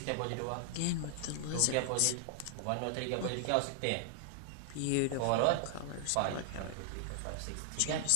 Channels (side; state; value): both; different; correlation 0.00